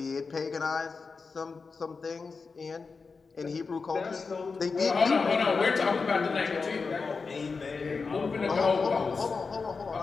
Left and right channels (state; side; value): quieter; right; 4.7 dB